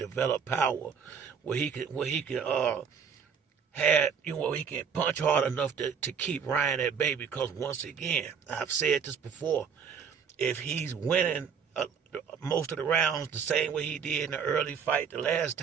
power, where he can he can punch hard enough to keep Ryan at bay. Because once again, I've said this before, if he's winning most of the rounds the same way he did in the early fight the last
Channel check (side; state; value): left; quieter; 6.7 dB